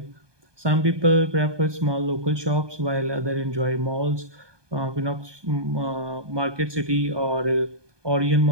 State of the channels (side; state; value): left; late; 1.2 ms